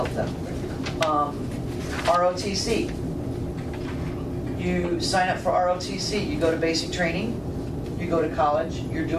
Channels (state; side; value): identical; both; correlation 1.00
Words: them. ROTC. You sign up for ROTC, you go to basic training, you go to college, you're